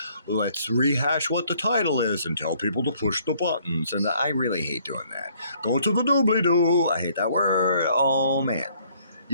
let's rehash what the title is and tell people to push the buttons. And I really hate doing that. Go to the doobly doo. I hate that word. Oh man.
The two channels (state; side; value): inverted; both; correlation -0.64